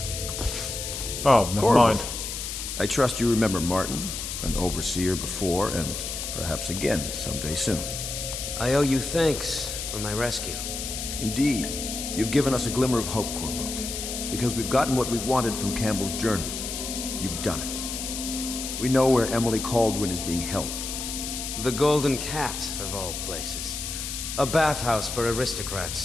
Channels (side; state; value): left; noise; hiss, 5 dB below the sound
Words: Oh, never mind. I trust you remember Martin, an overseer before, and perhaps again someday soon. I owe you thanks for my rescue. Indeed. You've given us a glimmer of hope, Corvo. Because we've gotten what we wanted from Campbell's journal. You've done it. We know where Emily Caldwin is being held. The Golden Cat, of all places. A bathhouse for